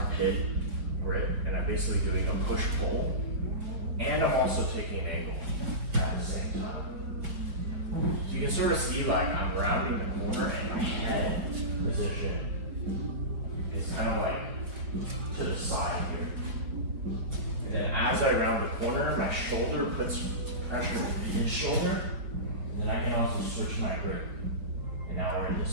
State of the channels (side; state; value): left; late; 4.8 ms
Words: grip, and I'm basically doing a push-pull, and I'm also taking an angle at the same time. So you can sort of see like I'm rounding the corner, and my head position is kind of like to the side here. And then as I round the corner, my shoulder puts pressure on his shoulder, and then I can also switch my grip. And now we're